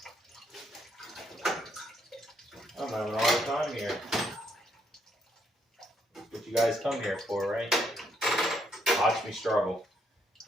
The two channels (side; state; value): both; normal; correlation 0.74